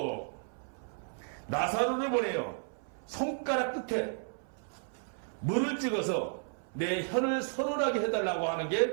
나사로를 보내요. 손가락 끝에 물을 찍어서 내 혀를 서늘하게 해달라고 하는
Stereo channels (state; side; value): silent; left; 56 dB below the other